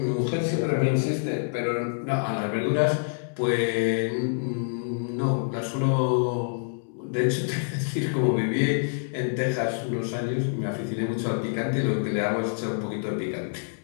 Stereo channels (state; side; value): silent; right; digital silence